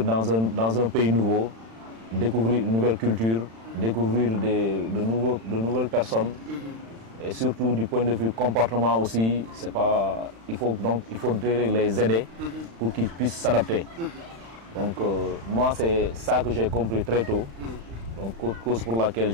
dans un pays nouveau, découvrir une nouvelle culture, découvrir de nouvelles personnes. Et surtout du point de vue comportement aussi, il faudrait les aider pour qu'ils puissent s'adapter. Donc moi, c'est ça que j'ai compris très tôt. Donc cause pour laquelle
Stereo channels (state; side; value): late; left; 35 ms